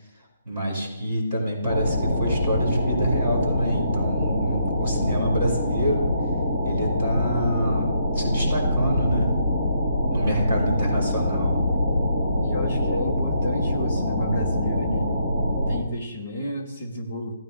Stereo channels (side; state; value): both; inverted; correlation -0.75